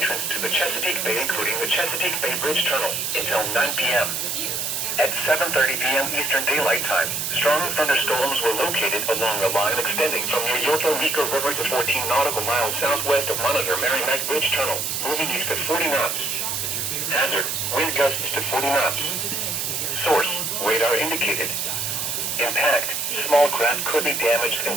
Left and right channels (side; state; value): right; noise; hiss, 1 dB below the sound